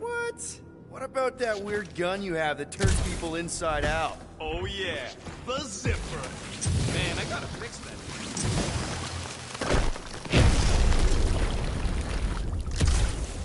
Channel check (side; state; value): both; identical; correlation 1.00